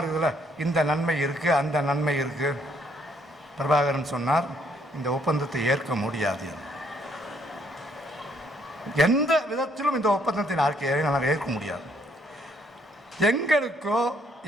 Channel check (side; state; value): both; normal; correlation 0.68